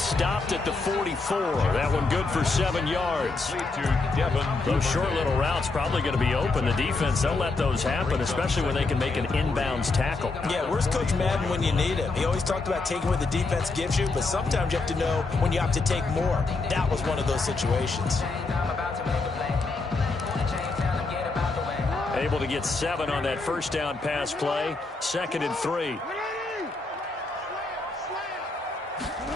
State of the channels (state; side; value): quieter; right; 3.7 dB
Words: at the 44. That one good for 7 yards. Those short little routes probably going to be open. The defense, they'll let those happen, especially when they can make an inbounds tackle. Yeah, where's Coach Madden when you need him? He always talked about taking what the defense gives you, but sometimes you have to know when you have to take more. That was one of those situations. Able to get 7 on that first down pass play. 2nd and 3.